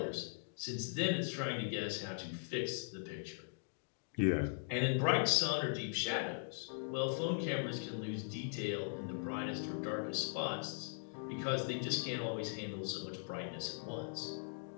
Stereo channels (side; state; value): right; silent; digital silence